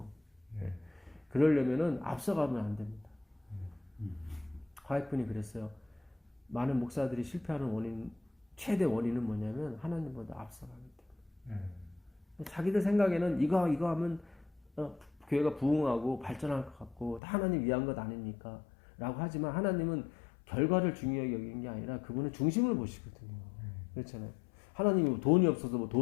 그러려면은 앞서가면 안 됩니다. 화이트분이 그랬어요. 많은 목사들이 실패하는 최대 원인은 뭐냐면 하나님보다 앞서가기 때문에. 자기들 생각에는 이거 하면 교회가 부흥하고 발전할 것 같고 다 하나님 위한 것 아닙니까? 라고 하지만 하나님은 결과를 중요하게 여기는 게 아니라 그분은 중심을 보시거든요. 그렇잖아요. 하나님이 돈이 없어서 뭐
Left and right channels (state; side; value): drops out; right; at 17.2 s